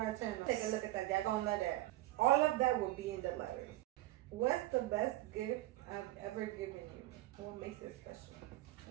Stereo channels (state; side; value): quieter; left; 16.6 dB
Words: channel. Take a look at that. Y'all gonna love that. All of that will be in the letter. What's the best gift I've ever given you? What makes it special?